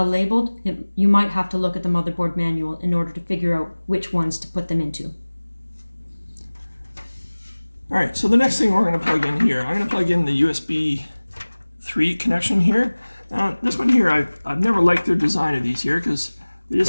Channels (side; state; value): both; inverted; correlation -1.00